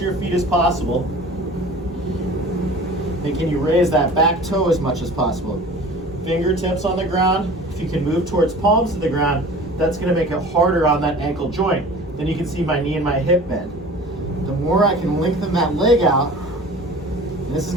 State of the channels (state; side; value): normal; both; correlation 0.41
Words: your feet as possible. And can you raise that back toe as much as possible? Fingertips on the ground. If you can move towards palms to the ground, that's gonna make it harder on that ankle joint. Then you can see my knee and my hip bend. The more I can lengthen that leg out, and this is